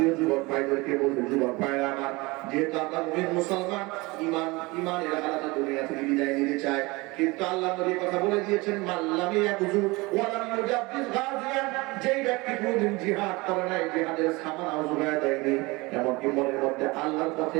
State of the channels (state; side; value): quieter; left; 23.8 dB